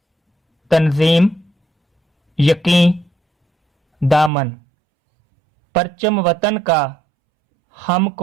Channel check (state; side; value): drops out; left; at 4.3 s